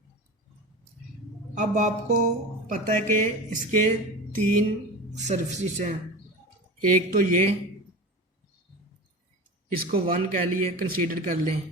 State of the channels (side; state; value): both; normal; correlation 0.30